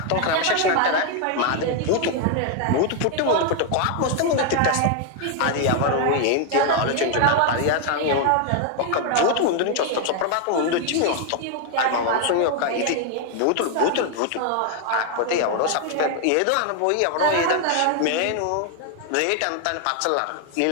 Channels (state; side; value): different; both; correlation 0.00